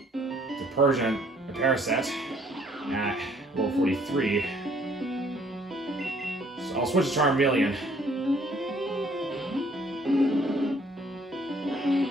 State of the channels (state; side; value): normal; both; correlation 0.61